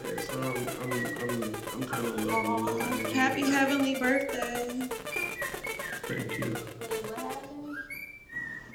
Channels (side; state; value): both; identical; correlation 1.00